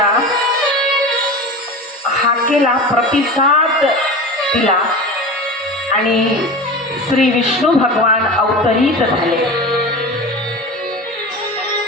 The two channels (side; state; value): both; normal; correlation 0.31